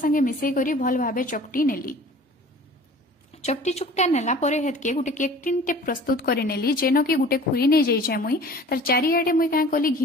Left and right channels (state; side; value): normal; both; correlation 0.45